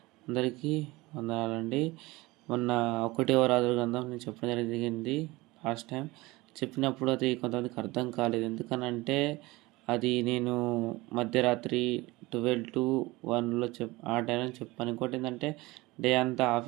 అందరికీ వందనాలండి. మొన్న 1వ రాజుల గ్రంథం నేను చెప్పడం జరిగింది. లాస్ట్ టైం చెప్పినప్పుడు అది కొంతమందికి అర్థం కాలేదు. ఎందుకనంటే అది నేను మధ్యరాత్రి 12 to 1లో ఆ టైంలో చెప్పాను. ఇంకోటి ఏంటంటే డే అంతా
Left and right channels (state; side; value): quieter; left; 21.3 dB